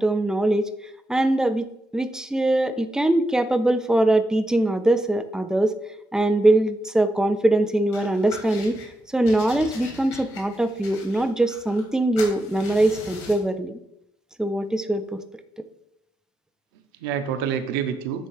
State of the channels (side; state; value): both; normal; correlation 0.86